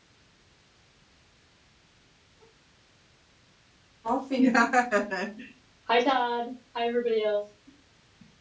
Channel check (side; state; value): both; identical; correlation 1.00